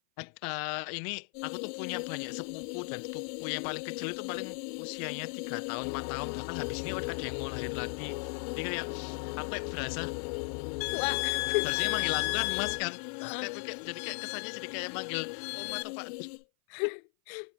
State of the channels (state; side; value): silent; right; 54 dB below the other